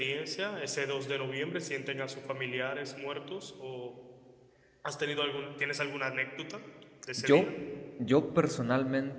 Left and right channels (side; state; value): both; identical; correlation 1.00